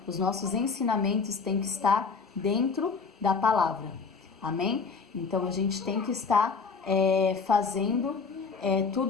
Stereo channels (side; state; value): right; quieter; 5.0 dB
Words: Os nossos ensinamentos têm que estar dentro da palavra. Amém? Então, a gente tem que estar fazendo